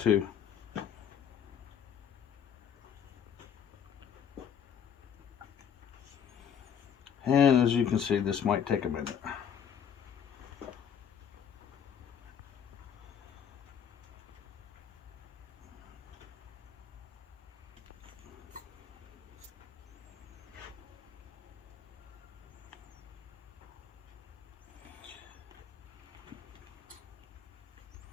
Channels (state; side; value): quieter; right; 8.2 dB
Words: And as you can see, this might take a minute.